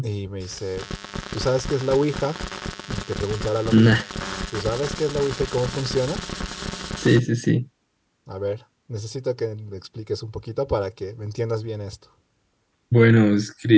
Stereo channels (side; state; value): both; identical; correlation 1.00